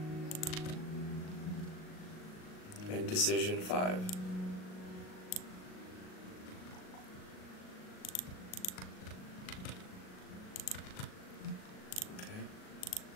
And decision 5.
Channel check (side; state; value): right; late; 38 ms